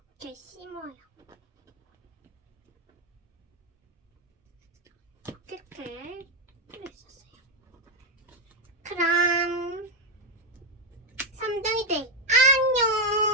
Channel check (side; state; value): both; normal; correlation 0.05